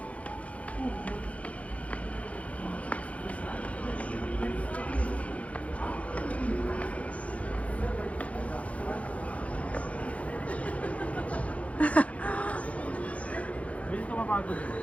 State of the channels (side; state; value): right; late; 0.065 ms